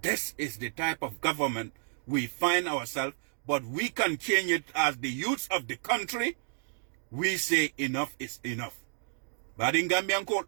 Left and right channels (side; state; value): left; silent; 57 dB below the other